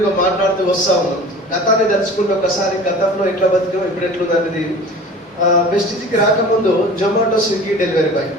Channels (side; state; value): both; normal; correlation 0.41